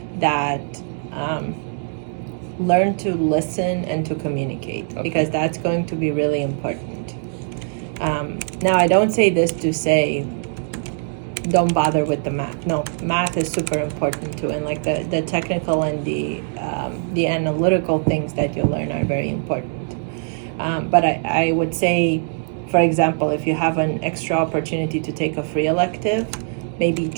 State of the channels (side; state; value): left; silent; digital silence